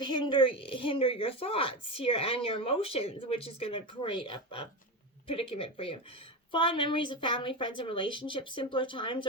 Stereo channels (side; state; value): both; normal; correlation 0.19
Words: hinder your thoughts here and your emotions, which is going to create a predicament for you. Fond memories of family, friends, and relationships. Simpler times